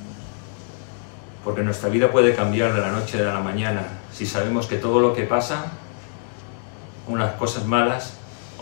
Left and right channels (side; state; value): right; silent; digital silence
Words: Porque nuestra vida puede cambiar de la noche a la mañana si sabemos que todo lo que pasa, unas cosas malas